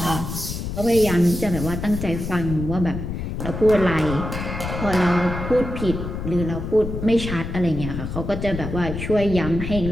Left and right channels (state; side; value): noise; left; rumble, 5 dB below the sound